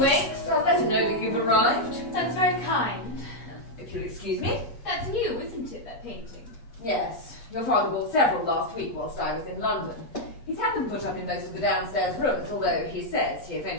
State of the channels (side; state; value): right; late; 8.4 ms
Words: I'll let him know that you've arrived. That's very kind. If you'll excuse me. That's new, isn't it, that painting? Yes, your father bought several last week whilst I was in London. He's had them put up in most of the downstairs rooms, although he says he